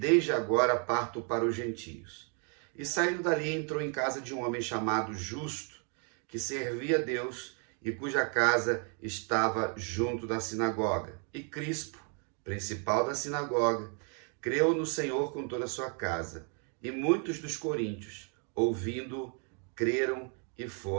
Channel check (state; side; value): quieter; left; 39.2 dB